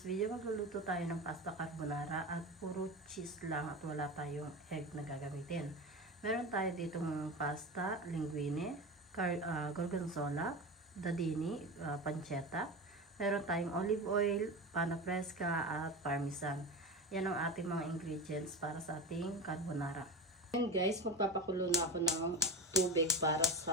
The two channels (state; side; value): normal; both; correlation 0.25